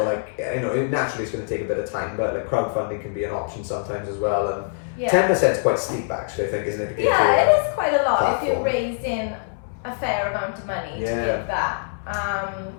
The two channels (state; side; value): silent; right; 63 dB below the other